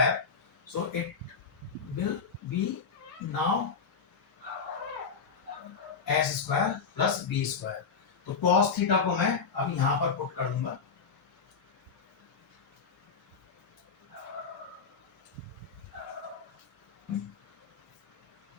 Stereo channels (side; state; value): right; quieter; 5.5 dB